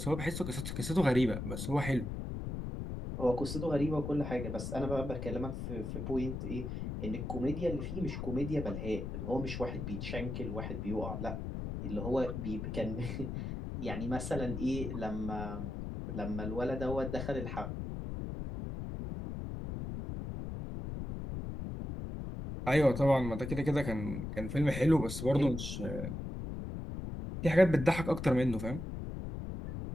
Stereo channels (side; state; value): left; noise; rumble, 5 dB below the sound